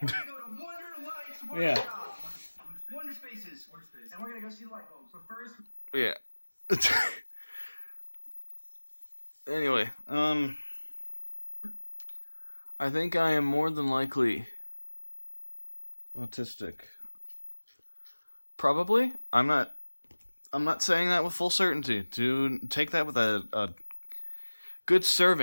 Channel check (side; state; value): both; inverted; correlation -1.00